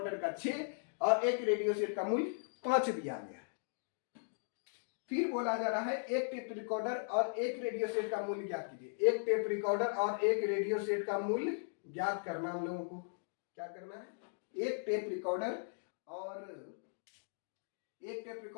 का 6 और एक रेडियो सेट का मूल्य 5 दिया गया है। फिर बोला जा रहा है एक टेप रिकॉर्डर और एक रेडियो सेट का मूल्य ज्ञात कीजिए। एक टेप रिकॉर्डर और एक रेडियो सेट का मूल्य ज्ञात करना, हम लोगों को क्या करना है? एक टेप रिकॉर्डर और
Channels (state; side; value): silent; right; digital silence